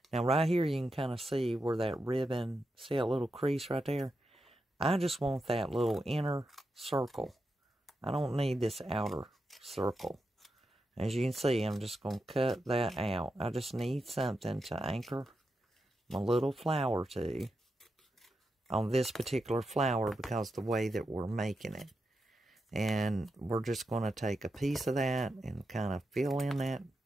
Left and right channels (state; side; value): normal; both; correlation 0.87